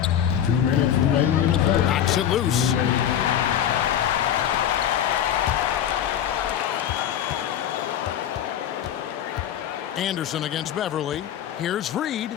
2 minutes remaining in the third. Knocks it loose. Anderson against Beverly. Here's Reid. He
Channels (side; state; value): right; quieter; 10.1 dB